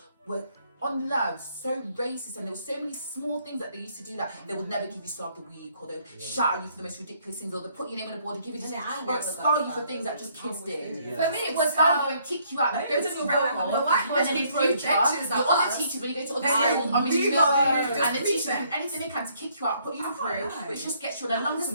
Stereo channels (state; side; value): inverted; both; correlation -0.66